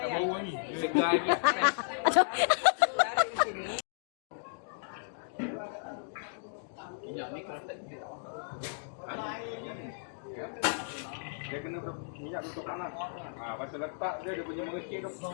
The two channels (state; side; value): silent; right; digital silence